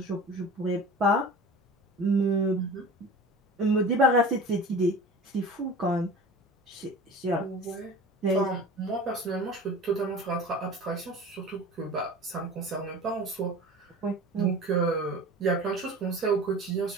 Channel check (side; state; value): both; normal; correlation 0.37